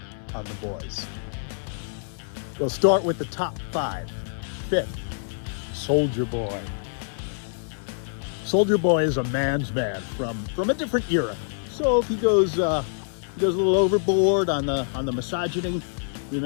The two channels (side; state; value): right; silent; 58 dB below the other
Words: on The Boys. We'll start with the top 5. 5th, Soldier Boy. Soldier Boy is a man's man from a different era. So if he goes a little overboard on the misogyny,